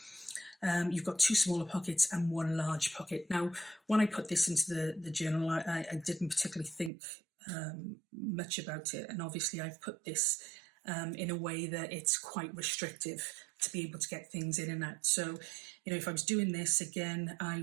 You've got 2 smaller pockets and 1 large pocket. Now, when I put this into the journal, I didn't particularly think much about it. And obviously I've put this in a way that it's quite restrictive to be able to get things in and out. So, you know, if I was doing this again, I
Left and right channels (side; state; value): left; drops out; at 6.9 s